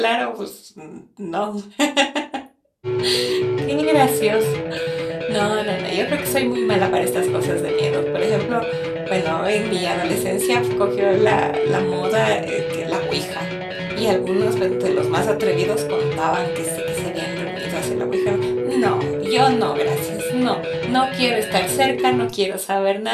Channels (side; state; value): both; identical; correlation 1.00